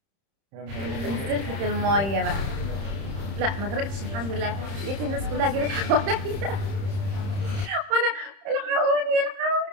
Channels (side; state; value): left; late; 30 ms